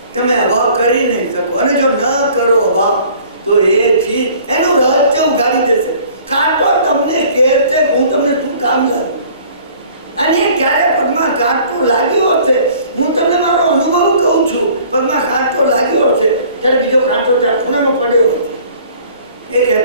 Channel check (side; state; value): both; inverted; correlation -0.52